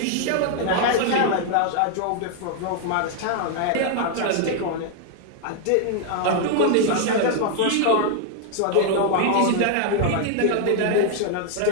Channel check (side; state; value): both; different; correlation 0.00